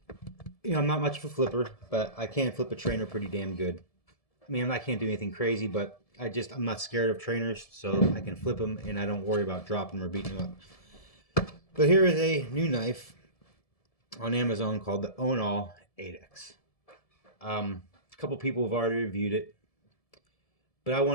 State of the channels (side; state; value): right; late; 1.7 ms